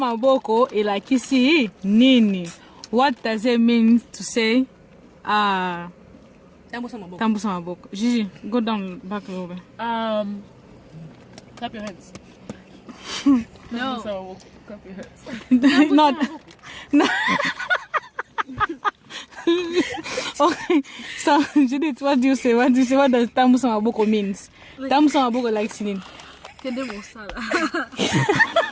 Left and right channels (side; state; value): both; identical; correlation 1.00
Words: ilakisi nini? What does it mean to say tambusa maboko? Gigi, go down back a little bit. Clap your hands. No. Clap your hands. Not. No. Okay, so Judith, what do you say? What does tambusa maboko means? Tambusa maboko like sinin. Kende mosala.